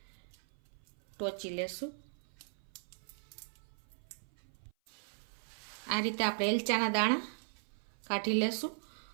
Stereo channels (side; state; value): left; silent; 52 dB below the other